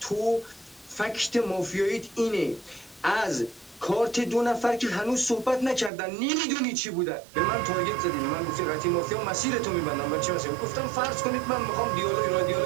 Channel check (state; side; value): drops out; left; at 5.9 s